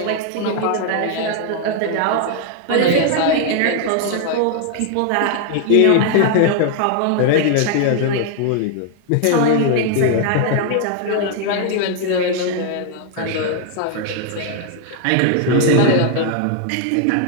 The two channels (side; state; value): both; different; correlation 0.00